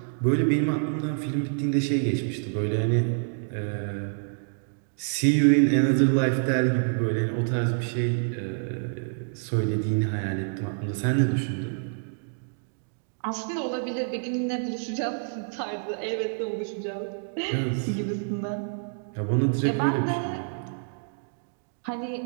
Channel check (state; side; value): silent; left; digital silence